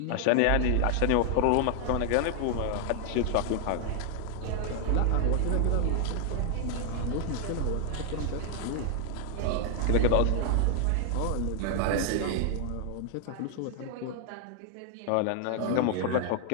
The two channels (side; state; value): both; different; correlation 0.00